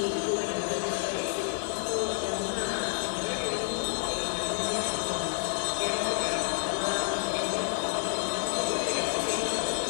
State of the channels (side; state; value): right; silent; digital silence